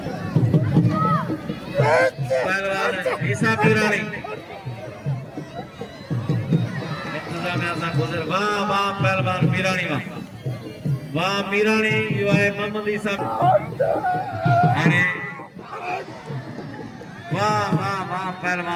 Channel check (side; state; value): both; identical; correlation 1.00